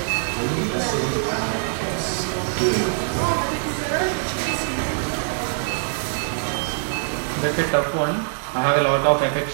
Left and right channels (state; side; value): silent; left; 57 dB below the other